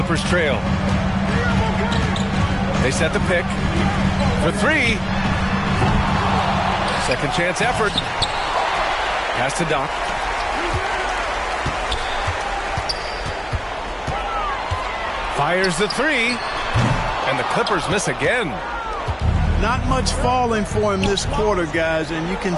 trail. They set the pick for 3. Second chance effort. Pass to Doc. Fires the 3. And the Clippers miss again. Not much falling for him this quarter, guys, and you can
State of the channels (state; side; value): identical; both; correlation 1.00